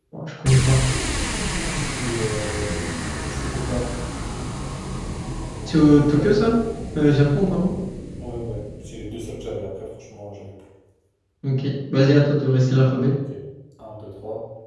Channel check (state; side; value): identical; both; correlation 1.00